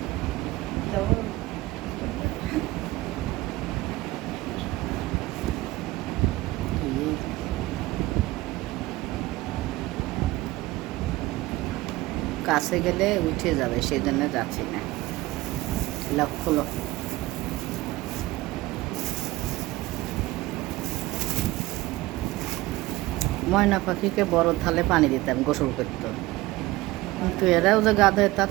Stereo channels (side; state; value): left; quieter; 18.9 dB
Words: কাছে গেলে উঠে যাবে, সেই জন্য যাচ্ছি না। লক্ষ লক্ষ ময়না পাখিকে বড় থালে পানি দিতাম, গোসল করতো। কিন্তু এরাও যে গাধে তা